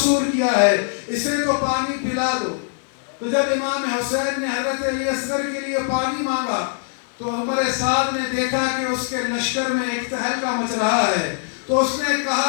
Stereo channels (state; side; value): silent; right; digital silence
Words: کیا ہے، اسے تو پانی پلا دو. تو جب امام حسین نے حضرت علی اصغر کے لیے پانی مانگا تو عمر سعد نے دیکھا کہ اس کے لشکر میں ایک تہلکہ مچ رہا ہے. تو اس نے